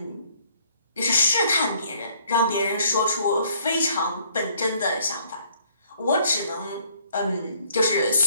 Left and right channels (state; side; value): inverted; both; correlation -0.62